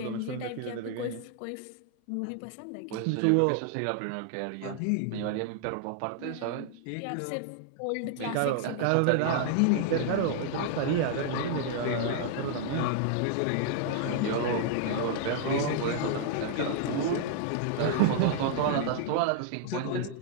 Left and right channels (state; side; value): different; both; correlation -0.01